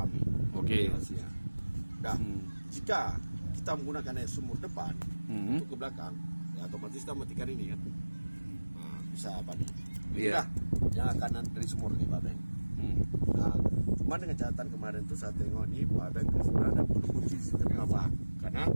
nih. Oke. Hasilnya. Nah, jika kita menggunakan air sumur depan untuk ke belakang, ya otomatis kita matikan ini kan. Nah, bisa apa nih? Inilah yang akan dari sumur nih Pak Beng. Nah, cuma dengan catatan kemarin tuh saya tengok nih Pak Beng sebenarnya ada perlu kunci sistem apa? Karena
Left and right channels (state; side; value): inverted; both; correlation -1.00